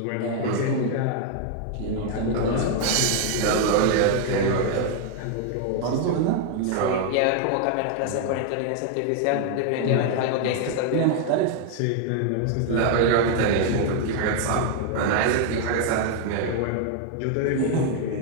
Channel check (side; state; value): both; different; correlation 0.00